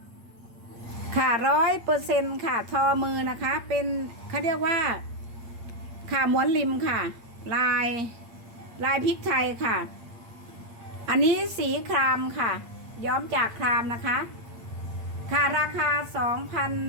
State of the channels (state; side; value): late; left; 8.6 ms